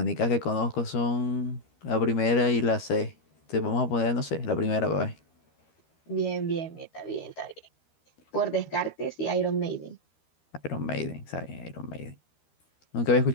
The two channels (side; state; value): right; late; 13 ms